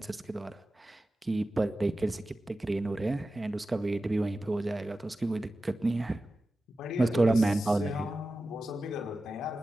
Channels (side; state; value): both; normal; correlation 0.94